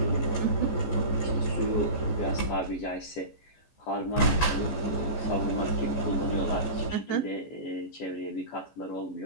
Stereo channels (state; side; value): late; right; 14 ms